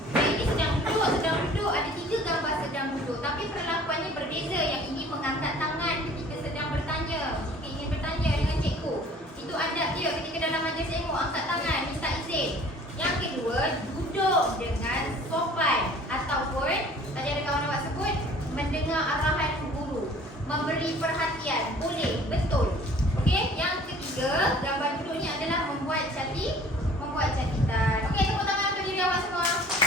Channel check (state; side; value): normal; both; correlation 0.50